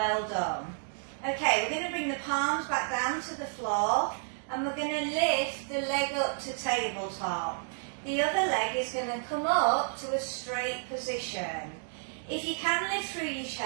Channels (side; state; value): left; silent; digital silence